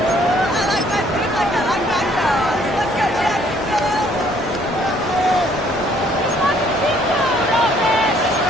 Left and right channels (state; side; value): normal; both; correlation 0.62